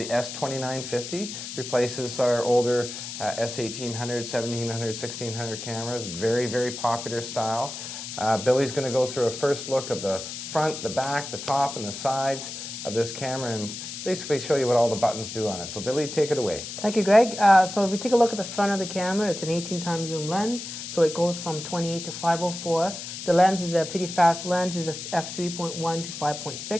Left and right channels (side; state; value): left; noise; hiss, 8 dB below the sound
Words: S2950. Replaces our older S1800, 1700, 1600 cameras. Very, very popular style. Billy's going to go through a first look of the front, the back, the top, and the sides of this camera and basically show you what all the buttons do on it. So Billy, take it away. Thank you, Greg. So if we take a look at the front of the camera, it's an 18x zoom lens. So it goes from 28 to 504. The lens is a pretty fast lens. It's a f3.1 to